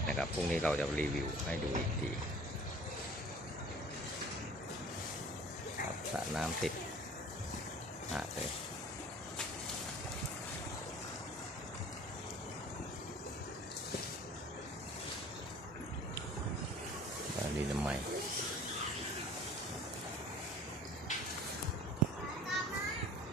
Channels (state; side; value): normal; both; correlation 0.47